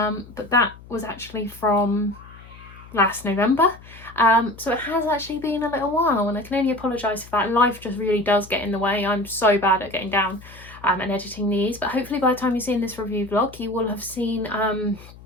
that was actually from last November. So it has actually been a little while, and I can only apologise for that. Life just really does get in the way. I'm so bad at getting down and editing these, but hopefully by the time you've seen this review vlog, you will have seen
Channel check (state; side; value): noise; left; hum, 20 dB below the sound